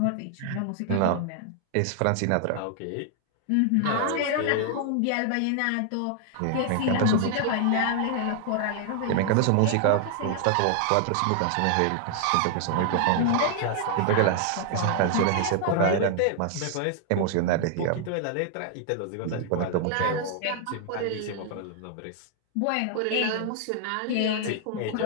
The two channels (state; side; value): different; both; correlation 0.00